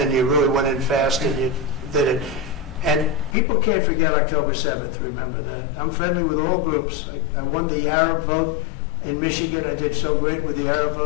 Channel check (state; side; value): drops out; right; at 3.4 s